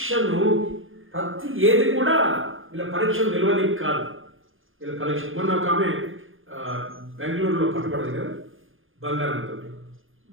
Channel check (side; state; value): left; late; 0.59 ms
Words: ఏది కూడా వీళ్ళ పరీక్షను నిలవనికి కాదు. వీళ్ళ పరీక్ష మొన్న ఒక ఆమె బెంగళూరులో పట్టుబడదు కదా, బంగారంతో